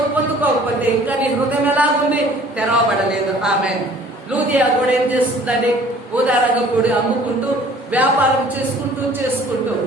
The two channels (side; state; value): both; normal; correlation 0.52